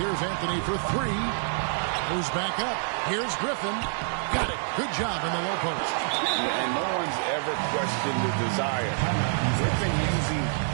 Anthony for 3. Moves back up. Here's Griffin. Got it. Good job in the low post. And no one's ever questioned the desire. Griffin using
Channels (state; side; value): silent; left; digital silence